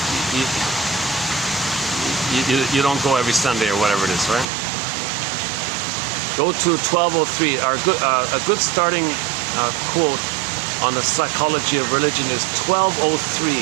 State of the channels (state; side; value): drops out; left; at 4.5 s